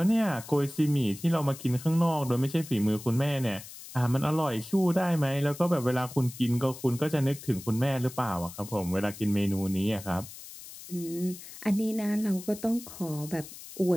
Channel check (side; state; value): left; noise; hiss, 15 dB below the sound